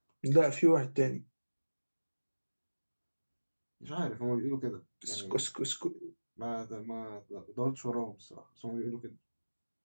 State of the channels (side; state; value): both; inverted; correlation -1.00